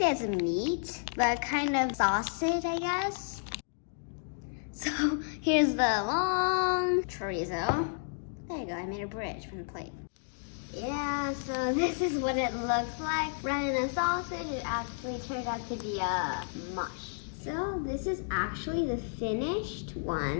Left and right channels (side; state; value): right; silent; digital silence